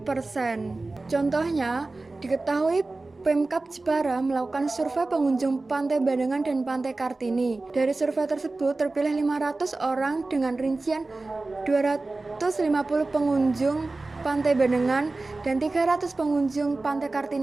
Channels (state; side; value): quieter; left; 3.3 dB